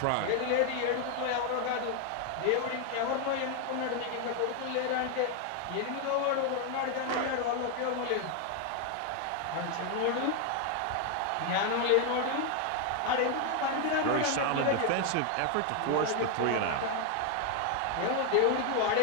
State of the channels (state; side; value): different; both; correlation 0.01